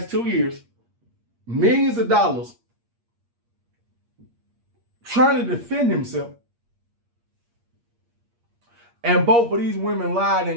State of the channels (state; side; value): late; left; 8.5 ms